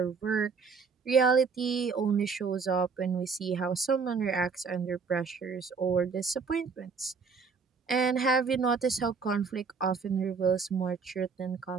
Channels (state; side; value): quieter; left; 5.3 dB